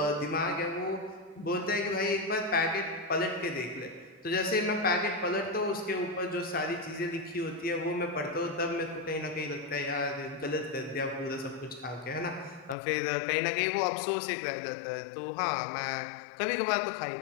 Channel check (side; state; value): right; drops out; at 12.8 s